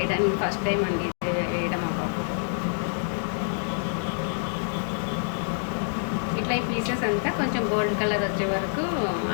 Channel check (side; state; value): right; silent; digital silence